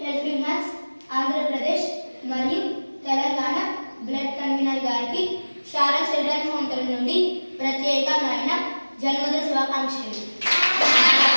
హెల్పింగ్ హ్యాండ్స్ ఆంధ్రప్రదేశ్ మరియు తెలంగాణ బ్లడ్ కన్వీనర్ గారికి శారా చిల్డ్రన్ హోమ్ తరఫు నుండి ప్రత్యేకమైన జన్మదిన శుభాకాంక్షలు.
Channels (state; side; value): inverted; both; correlation -1.00